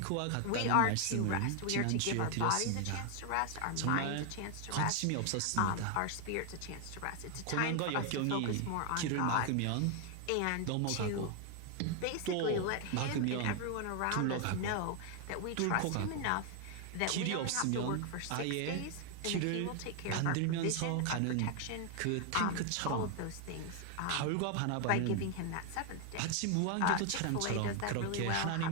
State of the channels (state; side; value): different; both; correlation 0.00